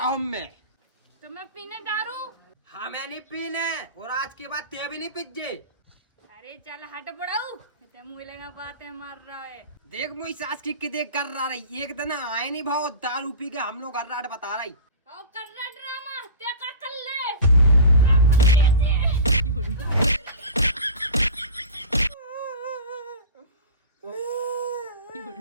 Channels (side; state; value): both; inverted; correlation -0.32